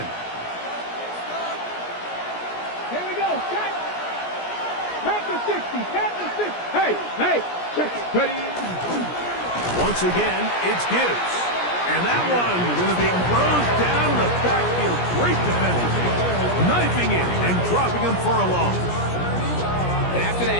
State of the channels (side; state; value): right; late; 17 ms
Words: Here we go. Set. Panther 60. Panther 60. Hey. Check. Ready? Once again, it's Gibbs. And that one going to be closed down the backfield. Great defensive. Knifing in and dropping him for a loss. And after